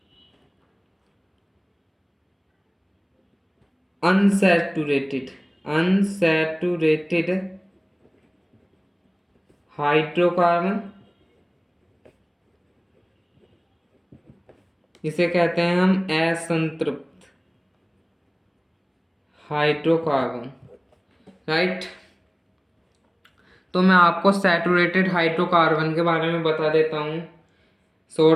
अनसैचुरेटेड हाइड्रोकार्बन, इसे कहते हैं हम असंतृप्त हाइड्रोकार्बन, राइट। तो मैं आपको सैचुरेटेड हाइड्रोकार्बन के बारे में बता देता हूँ,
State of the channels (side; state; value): both; identical; correlation 1.00